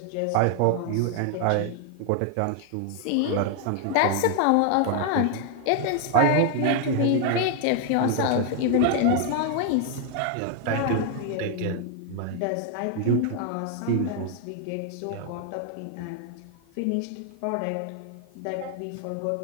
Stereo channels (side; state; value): both; different; correlation 0.00